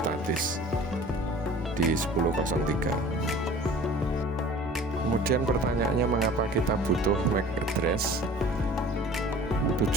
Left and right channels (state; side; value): normal; both; correlation 0.45